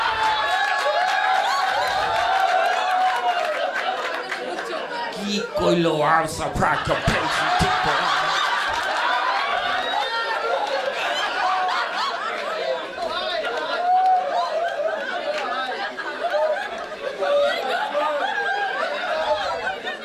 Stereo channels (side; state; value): both; identical; correlation 1.00